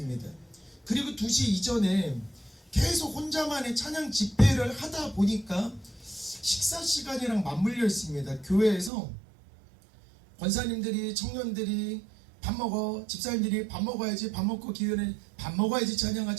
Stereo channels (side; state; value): left; drops out; at 8.9 s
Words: 그리고 2시 이전에 계속 혼자만의 찬양 집회를 하다 보니까 식사 시간이랑 맞물려 있습니다. 교회에서 권사님들이, 청년들이 밥 먹어, 집사님들이 밥 먹어야지, 밥 먹고 기회는 밥 먹어야지,